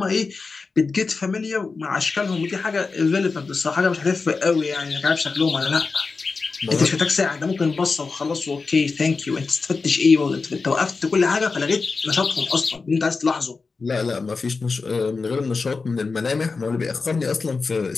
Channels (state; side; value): quieter; right; 4.4 dB